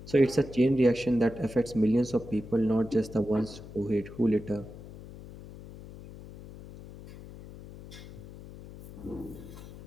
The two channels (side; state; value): left; noise; hum, 16 dB below the sound